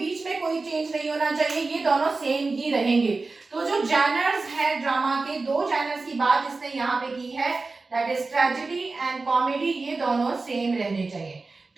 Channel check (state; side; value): quieter; left; 3.7 dB